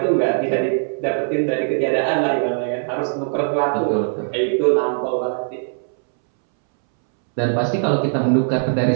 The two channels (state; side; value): silent; left; 65 dB below the other